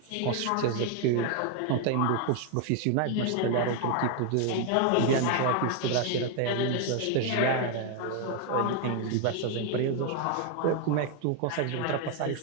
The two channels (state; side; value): different; both; correlation 0.01